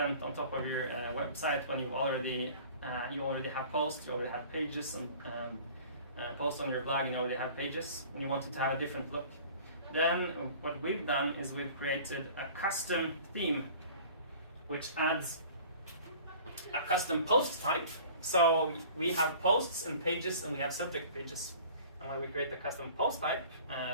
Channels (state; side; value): inverted; both; correlation -0.46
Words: on top of your website when you already have posts, you already have pages, and post on your blog, and you already have pages, and you want it to have a different look? Then what we've done is we've created a custom theme, which adds a custom post type. So we have posts and pages, and we have subject pages. And when we create the custom post type